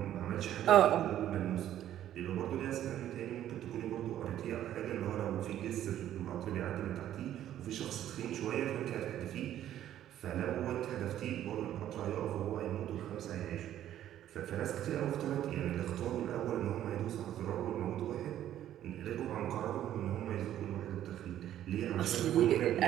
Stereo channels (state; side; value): quieter; left; 11.8 dB